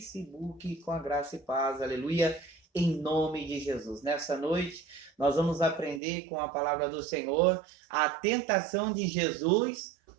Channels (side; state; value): left; drops out; at 6.0 s